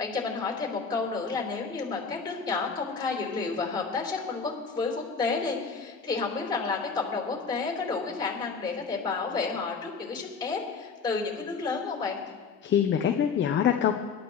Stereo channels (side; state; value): right; quieter; 5.4 dB